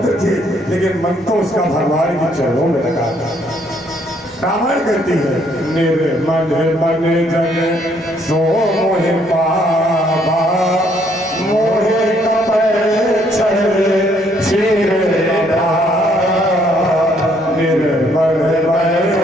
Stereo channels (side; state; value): both; normal; correlation 0.67